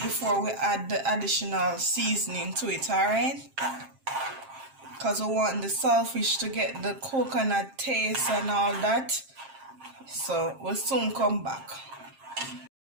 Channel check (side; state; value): left; late; 7.5 ms